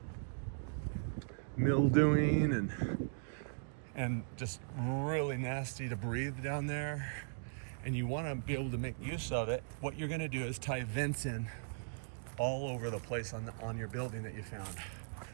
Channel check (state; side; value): silent; left; digital silence